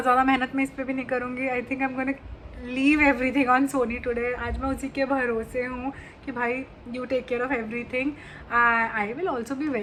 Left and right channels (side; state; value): both; identical; correlation 1.00